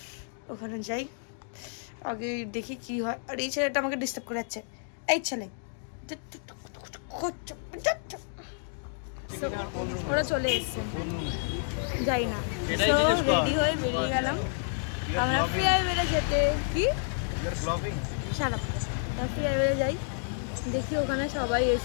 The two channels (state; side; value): silent; right; digital silence